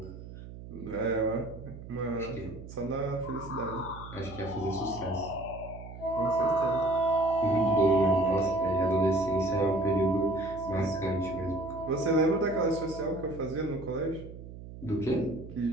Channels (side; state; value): right; noise; hum, 13 dB below the sound